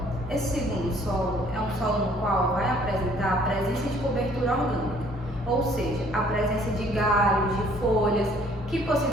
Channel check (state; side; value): normal; both; correlation 0.59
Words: Esse segundo solo é um solo no qual vai apresentar a presença de cobertura orgânica, ou seja, a presença de galhos, de folhas que